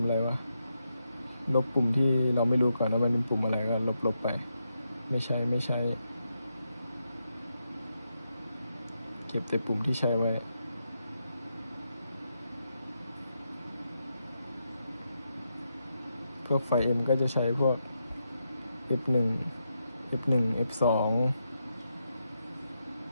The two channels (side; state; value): both; inverted; correlation -0.84